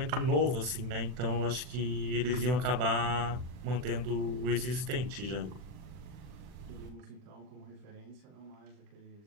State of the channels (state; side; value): late; left; 40 ms